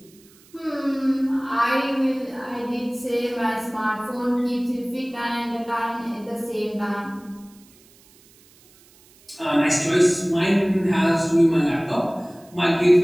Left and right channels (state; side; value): noise; right; hiss, 28 dB below the sound